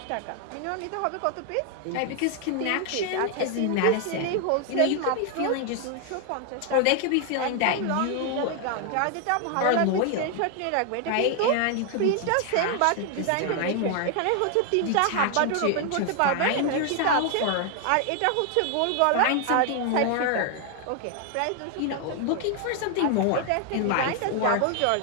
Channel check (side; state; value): both; different; correlation 0.00